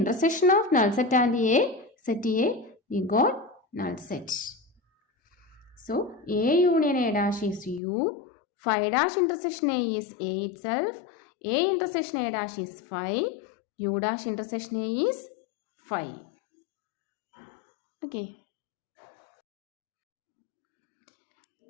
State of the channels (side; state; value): right; drops out; at 7.8 s